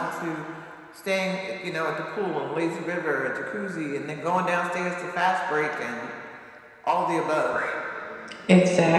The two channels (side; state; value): both; identical; correlation 1.00